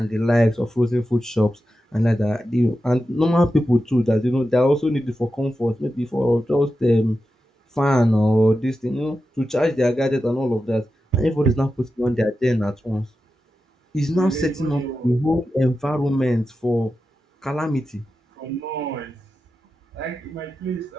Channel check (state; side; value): normal; both; correlation 0.91